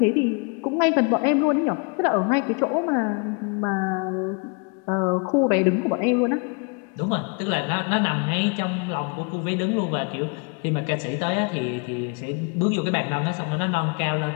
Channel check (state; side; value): quieter; right; 34.2 dB